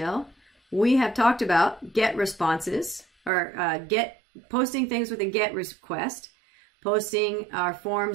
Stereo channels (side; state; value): left; drops out; at 3.3 s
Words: we have talked about GET responses, or posting things with a GET request, posting our